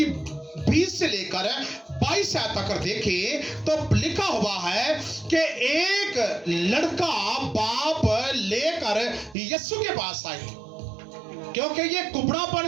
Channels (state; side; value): drops out; left; at 9.3 s